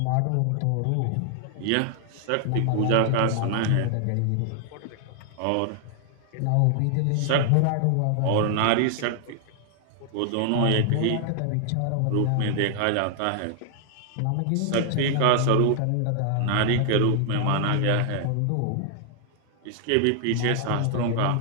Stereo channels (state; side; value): different; both; correlation 0.00